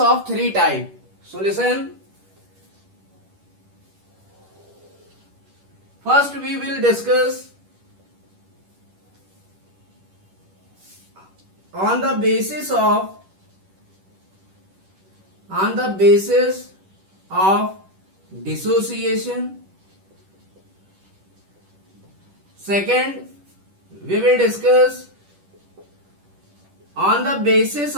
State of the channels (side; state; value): left; late; 10 ms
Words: three types. So listen, first we will discuss on the basis of dissociation. Second, we will discuss on the basis